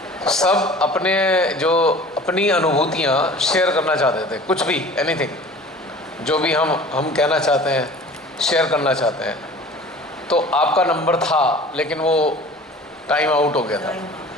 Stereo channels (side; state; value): both; normal; correlation 0.43